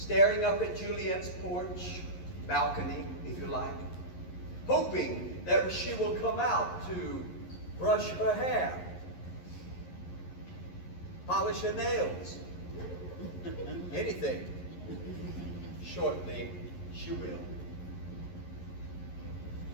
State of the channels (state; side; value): late; right; 11 ms